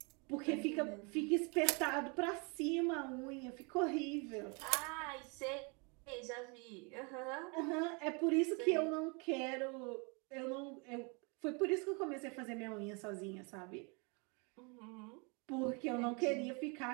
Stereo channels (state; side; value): quieter; left; 32.7 dB